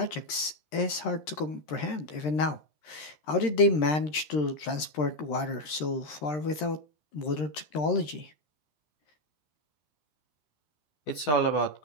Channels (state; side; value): late; right; 13 ms